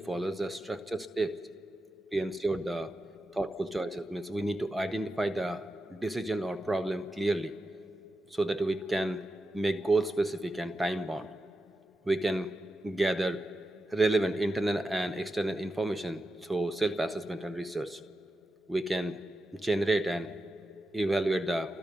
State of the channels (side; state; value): both; normal; correlation 0.90